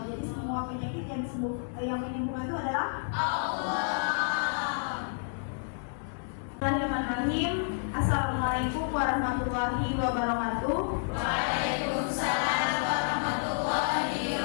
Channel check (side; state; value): right; silent; 58 dB below the other